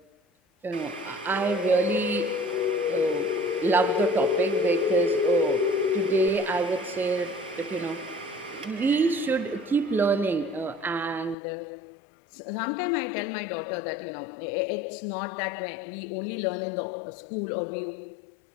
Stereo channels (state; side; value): drops out; right; at 11.4 s